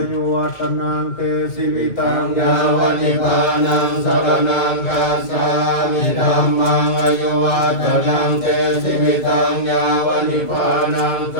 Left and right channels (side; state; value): right; late; 2.2 ms